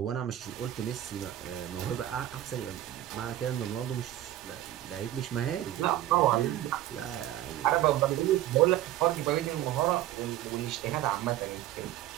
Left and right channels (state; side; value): quieter; left; 13.4 dB